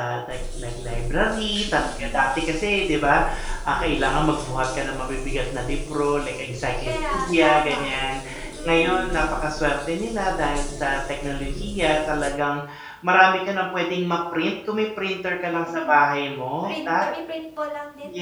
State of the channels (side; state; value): both; identical; correlation 1.00